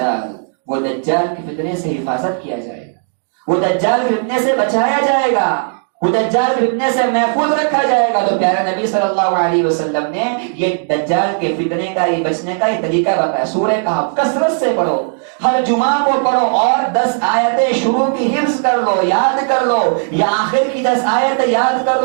وہ دجال کے فتنے سے حفاظت کیا جائے گا, وہ دجال کے فتنے سے بچایا جائے گا. وہ دجال کے فتنے سے محفوظ رکھا جائے گا. تو پیارے نبی صلی اللہ علیہ وسلم نے یہ دجال کے فتنے کا، یہ بچنے کا یہ طریقہ بتایا. سورہ کہف کثرت سے پڑھو، ہر جمعہ کو پڑھو، اور 10 آیتیں شروع کی حفظ کر لو، یاد کر لو، یا آخر کی 10 آیتیں یاد کر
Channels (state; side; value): silent; left; 60 dB below the other